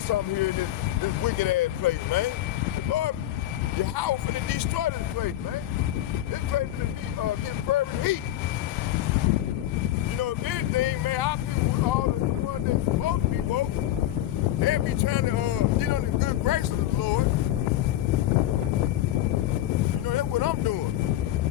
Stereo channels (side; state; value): right; quieter; 13.6 dB